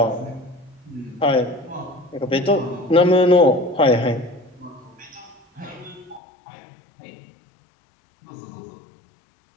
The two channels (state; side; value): drops out; right; at 6.2 s